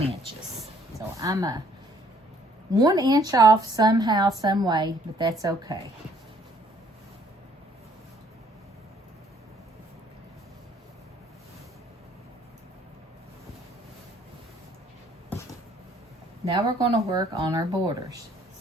inches. So I'm a 1 inch off somehow, some way, but that's okay. Now we're going to work on our borders.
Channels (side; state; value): both; normal; correlation 0.62